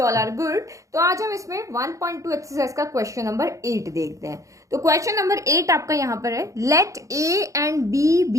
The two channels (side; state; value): left; late; 0.15 ms